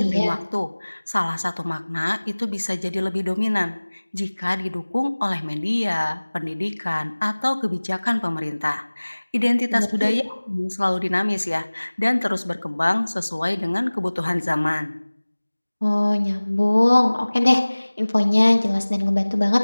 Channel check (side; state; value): both; inverted; correlation -1.00